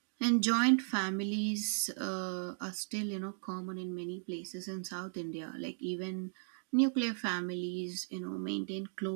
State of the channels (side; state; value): left; silent; digital silence